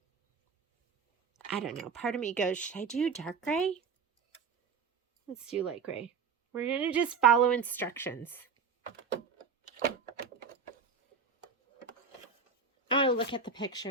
I don't know. Part of me goes, should I do dark gray? Let's do light gray. We're going to just follow instructions. Oh, look at the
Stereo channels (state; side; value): quieter; left; 5.6 dB